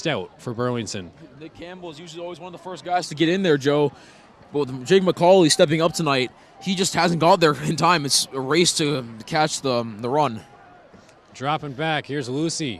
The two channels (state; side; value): identical; both; correlation 1.00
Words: for Burlington. Nick Campbell is usually always one of the first guys to get in there, Joe. But with Jake McCauley stepping up tonight, he just hasn't got there in time. It's a race to catch the run. Dropping back, here's